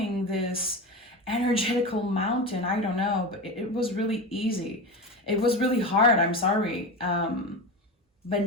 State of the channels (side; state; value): both; normal; correlation 0.23